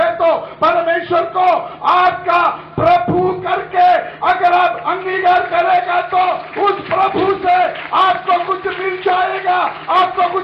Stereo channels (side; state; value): both; identical; correlation 1.00